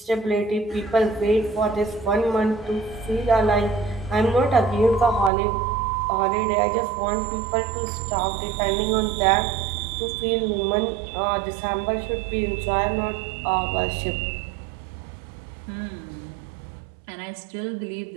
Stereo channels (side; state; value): left; drops out; at 5.3 s